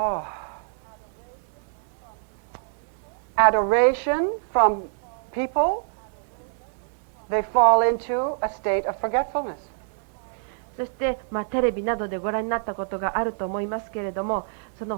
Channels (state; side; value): silent; left; digital silence